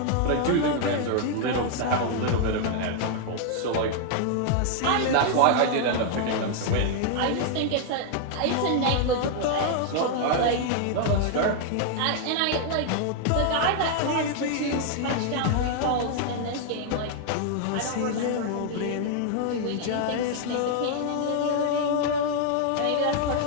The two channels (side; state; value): both; different; correlation 0.00